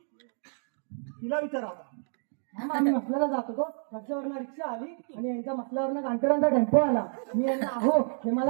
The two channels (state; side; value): silent; left; 58 dB below the other